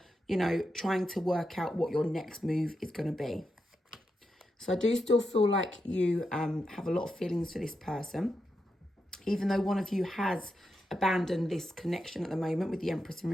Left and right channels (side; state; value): both; normal; correlation 0.86